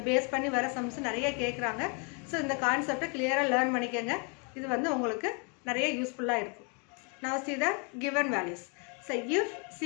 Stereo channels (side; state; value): right; quieter; 35.7 dB